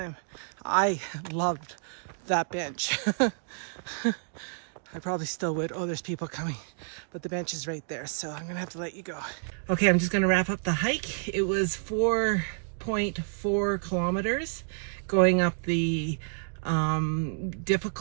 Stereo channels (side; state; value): left; silent; digital silence